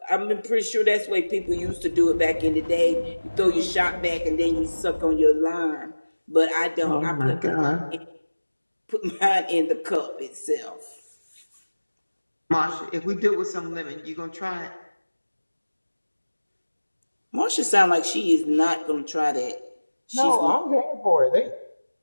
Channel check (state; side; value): inverted; both; correlation -1.00